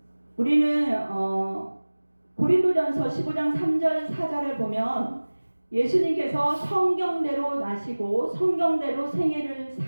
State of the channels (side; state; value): both; inverted; correlation -1.00